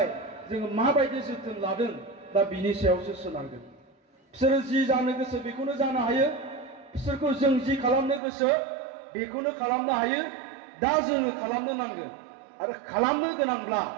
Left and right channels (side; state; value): left; drops out; at 8.2 s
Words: जोङो माबायदि जोथोन लादों दा बिनि सायावसो सोनारगोन बिसोरो जि जानो गोसो बेखौनो जानो हायो बिसोरखौ जों जि खालामनो गोसो बेखौनो खालामनो हायो दा जोङो खालामनो नांगोन आरो खालामनो गोनांब्ला